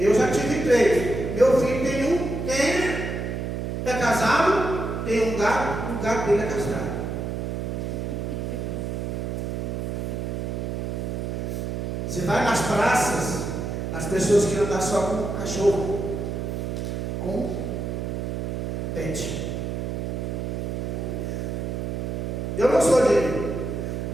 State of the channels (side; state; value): right; noise; hum, 3 dB below the sound